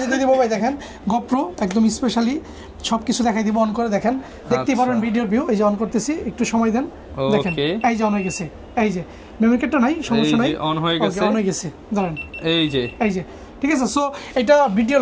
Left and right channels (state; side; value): identical; both; correlation 1.00